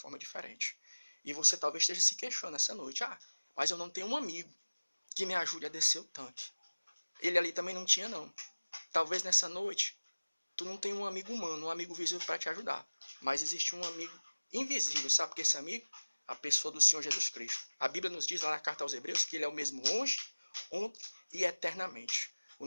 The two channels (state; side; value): inverted; both; correlation -1.00